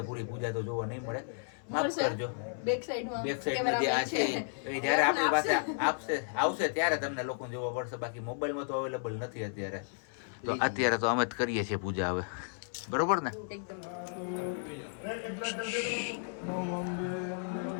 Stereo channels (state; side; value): silent; right; 56 dB below the other